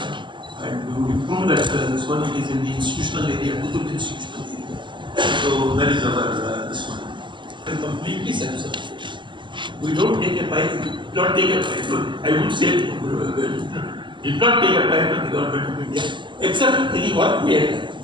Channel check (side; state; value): left; late; 0.23 ms